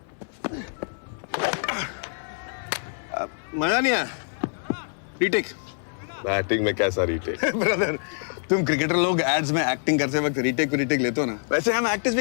मजा नहीं आया। रीटेक। बैटिंग में कैसा रीटेक? ब्रदर, तुम क्रिकेटर लोग एड्स में एक्टिंग करते वक्त रीटेक लेते हो ना, वैसे हम एक्टर्स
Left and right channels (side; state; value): right; silent; digital silence